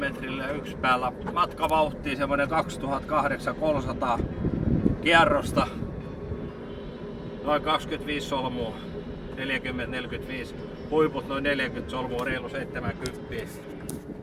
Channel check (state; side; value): identical; both; correlation 1.00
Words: yksi päällä. Matkavauhtia semmonen 2800 kierrosta. Noin 25 solmua. 40-45. Huiput noin 40 solmua, reilu 70.